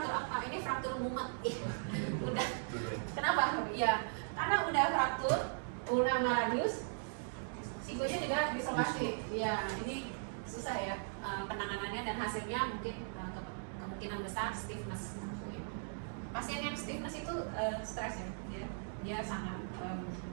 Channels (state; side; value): silent; left; digital silence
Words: apa? Ini fraktur mumet. Udah. Kenapa? Ya, karena udah fraktur ulna sama radius, sikunya juga dislokasi. Ya, ini susah ya penanganannya dan hasilnya mungkin kemungkinan besar stiffness. Pasien yang stiffness itu stres ya, dia sangat